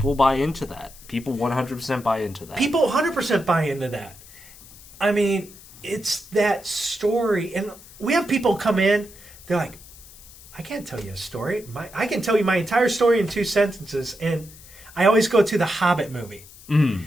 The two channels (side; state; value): left; noise; hiss, 20 dB below the sound